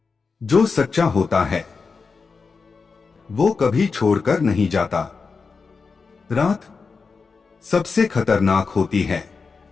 जो सच्चा होता है वो कभी छोड़कर नहीं जाता। रात सबसे खतरनाक होती है,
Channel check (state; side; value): quieter; right; 4.8 dB